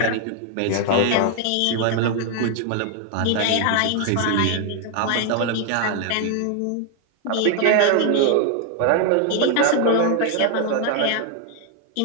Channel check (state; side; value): different; both; correlation 0.00